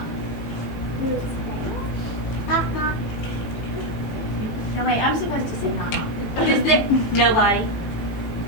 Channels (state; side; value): late; right; 18 ms